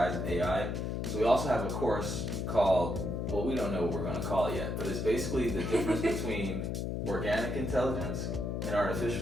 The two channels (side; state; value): left; noise; hum, 2 dB below the sound